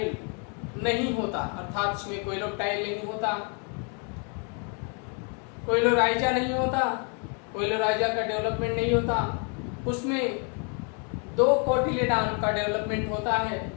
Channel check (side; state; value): right; quieter; 38.5 dB